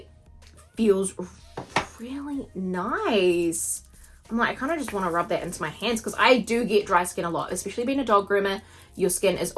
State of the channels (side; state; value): both; identical; correlation 1.00